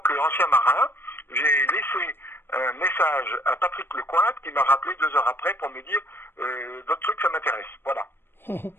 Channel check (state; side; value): late; right; 0.10 ms